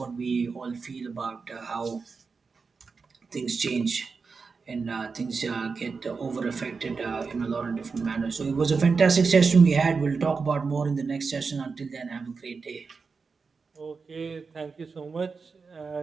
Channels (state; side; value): quieter; left; 4.9 dB